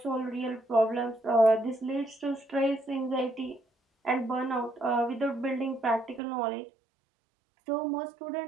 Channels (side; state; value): left; drops out; at 6.2 s